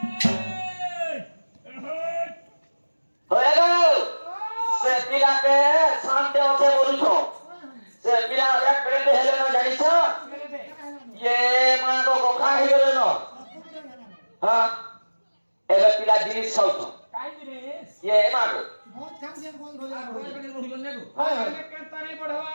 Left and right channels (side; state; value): both; inverted; correlation -1.00